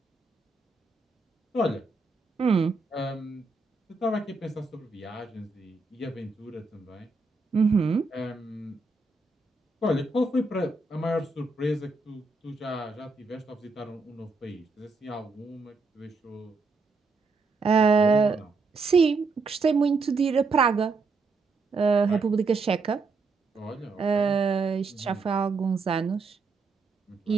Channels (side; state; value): left; quieter; 3.9 dB